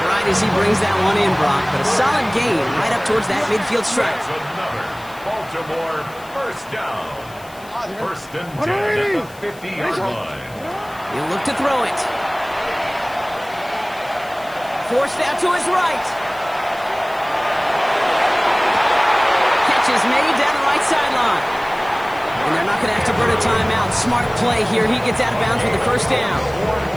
right as he brings that one in, Brock. But a solid gain right up towards that midfield stripe. That's another Baltimore first down. First and 10 at the 50-yard line. He'll look to throw it. Forced out to his right. Catch is made down the right sideline. And they're not going to have to burn a timeout. Smart play here. He gets out of bounds with the first down. 4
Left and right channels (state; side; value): noise; left; hiss, 23 dB below the sound